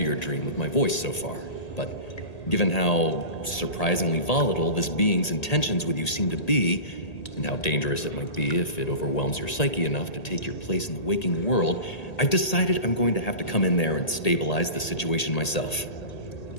your dream with my voice so far, but given how surprisingly volatile this being's intentions with you seem to be, and how dangerous it might be if it overwhelms your psyche enough to take your place in the waking world, I've decided I'm going to have to come in there and stabilize the situation myself.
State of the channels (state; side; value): late; right; 1.8 ms